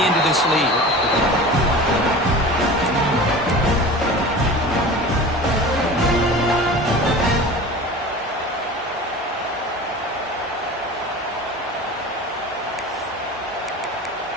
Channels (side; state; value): both; normal; correlation 0.35